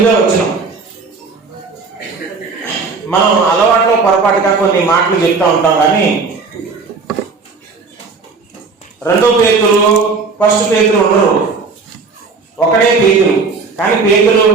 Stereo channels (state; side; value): quieter; left; 4.5 dB